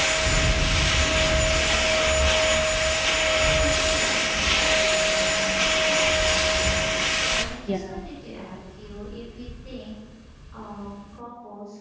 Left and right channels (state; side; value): identical; both; correlation 1.00